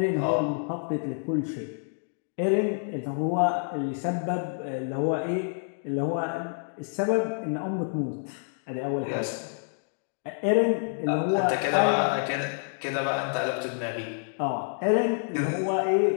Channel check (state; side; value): silent; right; digital silence